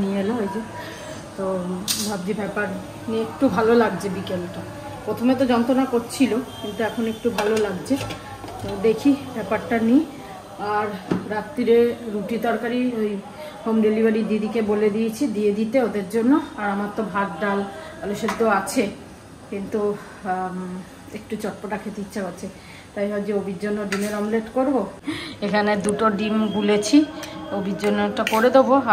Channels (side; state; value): both; identical; correlation 1.00